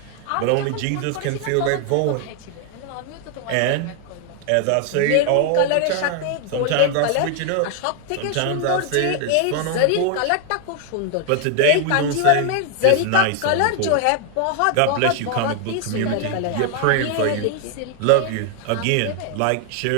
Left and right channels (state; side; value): different; both; correlation 0.00